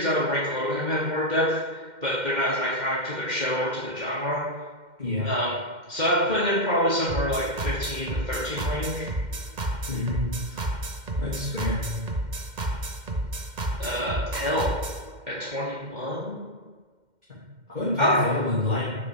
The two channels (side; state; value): left; late; 2.1 ms